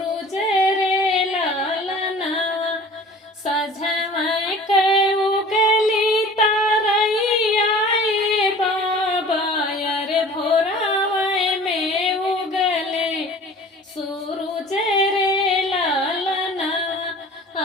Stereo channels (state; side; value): normal; both; correlation 0.44